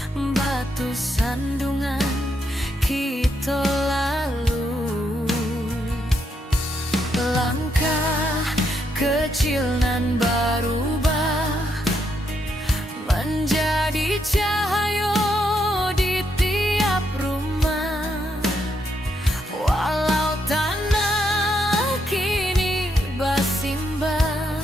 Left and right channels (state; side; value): normal; both; correlation 0.78